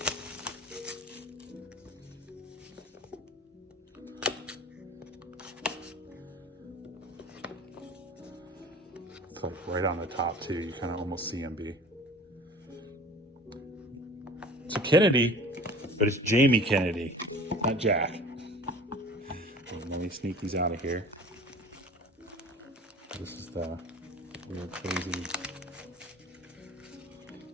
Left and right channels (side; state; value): both; normal; correlation 0.43